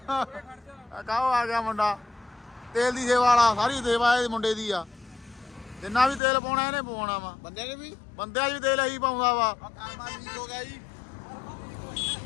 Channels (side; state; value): right; drops out; at 6.2 s